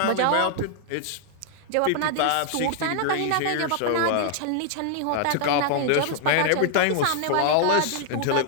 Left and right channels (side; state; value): both; different; correlation 0.00